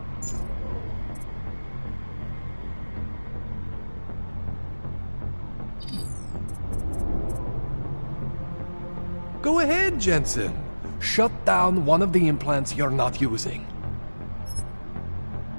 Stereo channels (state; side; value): inverted; both; correlation -1.00